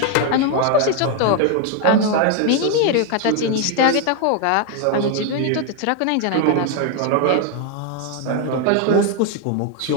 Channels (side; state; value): both; different; correlation 0.01